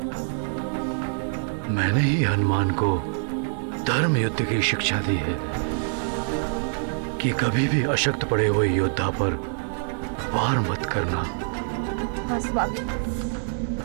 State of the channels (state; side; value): silent; left; digital silence